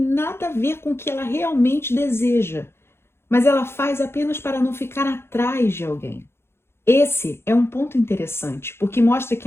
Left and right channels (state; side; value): late; right; 0.12 ms